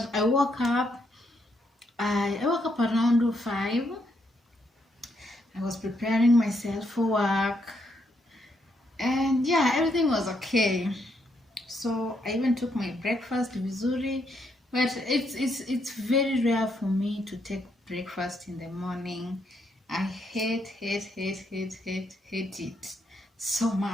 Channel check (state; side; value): normal; both; correlation 0.76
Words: I woke up around 5. I was preparing myself for work, and yeah, everything was okay. So I even took my breakfast vizuri, but it's very rare for me to take breakfast in the morning. I hate it so